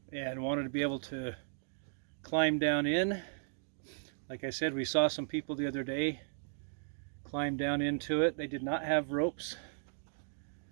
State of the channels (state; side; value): silent; left; digital silence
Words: and wanted to be able to climb down in. Like I said, we saw some people the other day climb down into it. They did not have ropes.